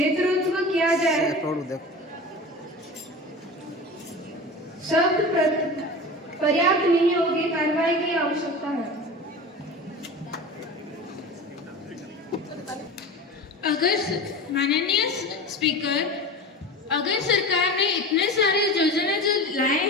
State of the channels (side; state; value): both; normal; correlation 0.32